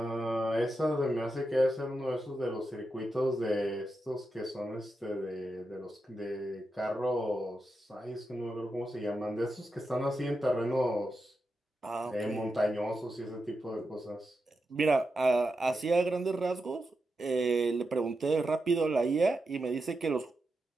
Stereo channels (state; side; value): normal; both; correlation 0.88